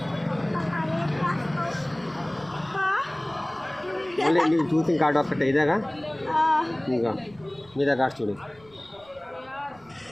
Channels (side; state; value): right; noise; rumble, 27 dB below the sound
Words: మళ్ళీ నీకు చూసిన కార్డు ఒక్కటే ఇదేగా, ఇంకా మీద కార్డ్స్ చూడు.